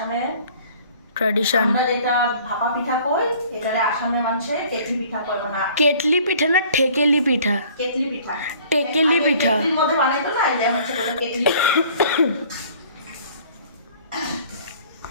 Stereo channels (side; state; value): both; inverted; correlation -0.52